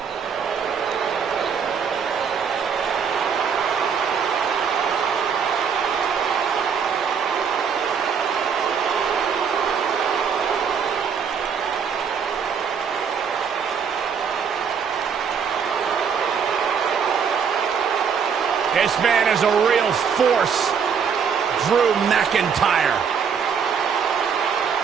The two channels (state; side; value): quieter; left; 6.7 dB